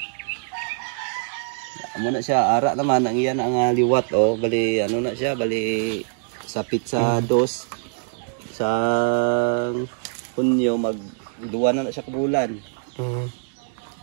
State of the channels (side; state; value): left; silent; digital silence